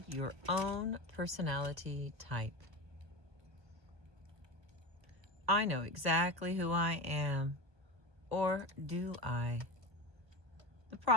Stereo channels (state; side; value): late; left; 1.1 ms